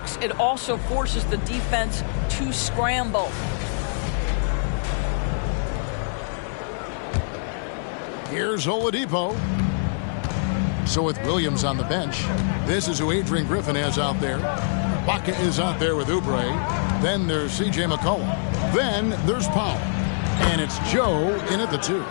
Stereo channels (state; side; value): silent; right; 62 dB below the other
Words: It also forces the defense to scramble. Here's Oladipo. So with Williams on the bench, this is who Adrian Griffin has out there. Baca is out there with Oubre. Then there's C.J. McCollum. Then there's Powell. And it's Joe in at the 2.